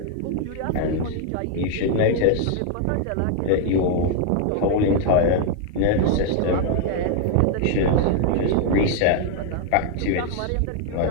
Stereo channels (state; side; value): different; both; correlation 0.00